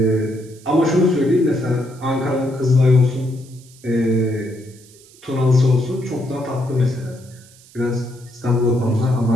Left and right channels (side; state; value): right; noise; hiss, 25 dB below the sound